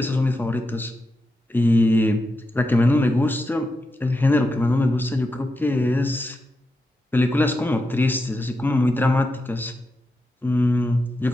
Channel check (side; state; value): both; normal; correlation 0.87